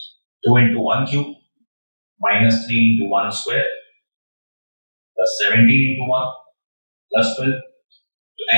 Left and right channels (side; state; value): both; inverted; correlation -1.00